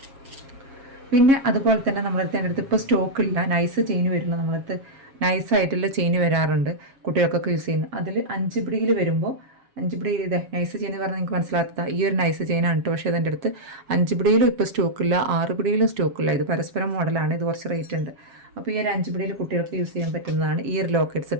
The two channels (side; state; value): left; late; 7.3 ms